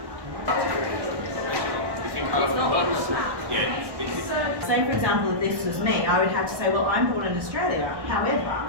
Say, for example, if this was me, I would have to say, well, I'm born in Australia. However,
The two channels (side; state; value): left; late; 1.1 ms